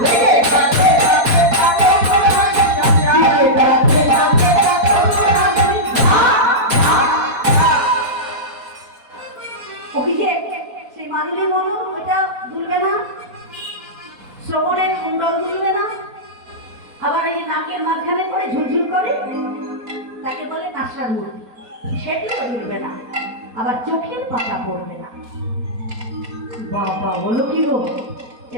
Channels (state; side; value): late; left; 4.2 ms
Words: ওই যে সেই মাদুলি বলো ওইটা দুলবে না, শ্রবণের কুণ্ডল দুলবে না, আবার এই নাকের মাঝখানে করে ঝুলঝুল করে তাকে বলে নাসার মূর্তি, সেটিও দুলবে না, আবার চোখের পাতা পড়বে না। বাবা বলো কি গো, এ